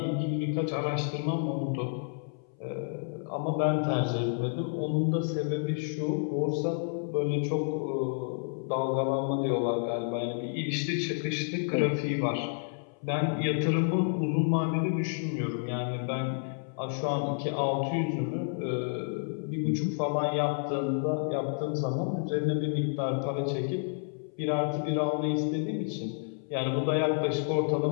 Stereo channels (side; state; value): right; silent; 58 dB below the other